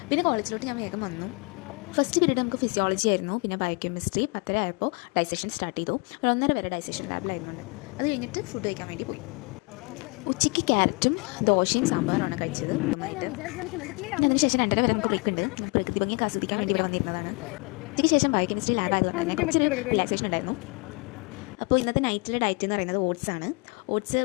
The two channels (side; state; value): right; quieter; 30.2 dB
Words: പിന്നെ കോളേജിലോട്ട് ഞാൻ വേഗം വന്നു. ഫസ്റ്റ് പീരീഡ് നമുക്ക് ഫിസിയോളജി ആയിരുന്നു, പിന്നെ ബയോകെമിസ്ട്രി. 10:30 ആയപ്പോൾ ഡൈസെഷൻ സ്റ്റാർട്ട് ചെയ്തു. ഒരു 1:30 വരെ ഡൈസെഷൻ ലാബിലായിരുന്നു. അത് കഴിഞ്ഞിട്ട് ഫുഡ് കഴിക്കാൻ വേണ്ടി പോയി. ഉച്ചയ്ക്ക് ക്യാരറ്റും ദോശയും സാമ്പാറുമാണ് കഴിച്ചത്. നന്നായിട്ട് അതിനുശേഷം 2:30 വരെ നമുക്ക് ബ്രേക്ക് ഉണ്ട്. പ്രകൃതി ഭംഗിയൊക്കെ ആസ്വദിക്കാൻ വേണ്ടി ഇവിടെ വന്നിരുന്നതാണ്. ഉച്ചയ്ക്ക് ശേഷം ബയോകെമിസ്ട്രി ലാബ് ആയതുകൊണ്ട് തന്നെ കുറച്ചൊരു റിലാക്സേഷൻ ഉണ്ടായിരുന്നു. അപ്പോൾ ഇന്നത്തെ നൈറ്റിലെ ഡയറ്റ് എന്ന് പറയുന്നത് ഓട്സ് ആണ്. ഓട്സ്